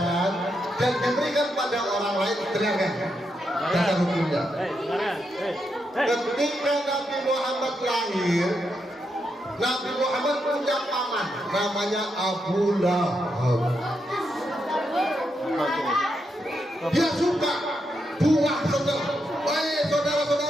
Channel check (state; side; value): normal; both; correlation 0.83